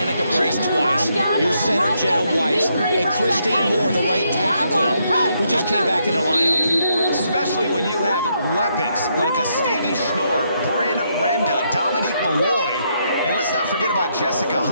Brace twice. Your center, Jenna Weiss, and Christine Moore, the right tackle, who just came back in the lineup. Especially when you have weapons like a Stevie Schnorr, Bryn Renda, Dominique Malloy, and let's not forget about Jessica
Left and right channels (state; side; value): inverted; both; correlation -0.77